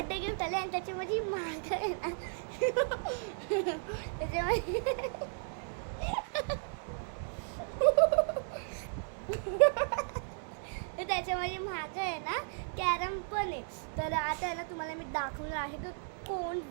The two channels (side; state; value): left; silent; digital silence